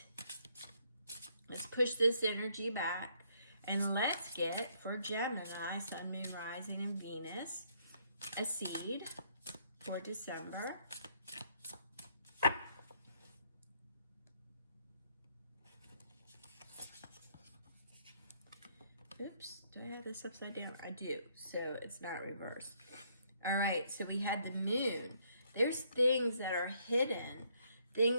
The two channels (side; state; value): both; inverted; correlation -0.69